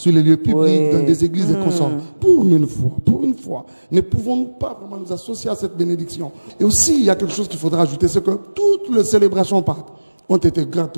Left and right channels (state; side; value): inverted; both; correlation -1.00